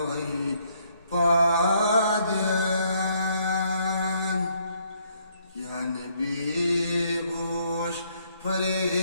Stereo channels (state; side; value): inverted; both; correlation -0.69